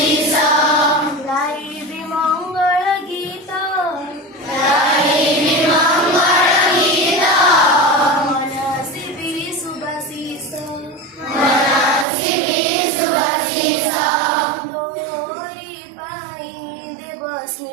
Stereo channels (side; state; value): left; drops out; at 12.1 s